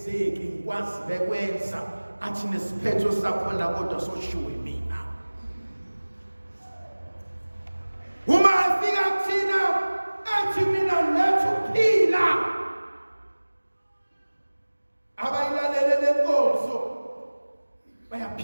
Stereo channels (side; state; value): both; inverted; correlation -1.00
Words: ngikwazi bekwenza, athi nesiphetho sakhona kodwa soshiwe mina. Uma afika kuthina athi mina lethu phila, abayilalele lenkonzo